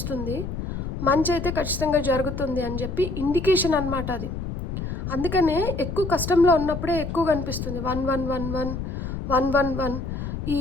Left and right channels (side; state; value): left; noise; rumble, 5 dB below the sound